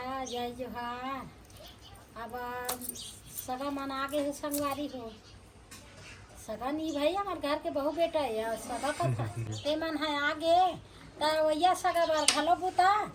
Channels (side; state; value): both; identical; correlation 1.00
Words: जय जोहार। अब सगा मन आगे है संगवारी हो सगा नहीं भाई हमारे घर के बहू बेटा है सगा कथा ते मन है आगे वैया सगा बार घलो बुता